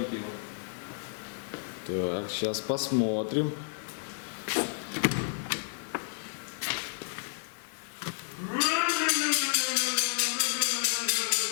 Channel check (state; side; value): silent; right; 57 dB below the other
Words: его. Так, сейчас посмотрим.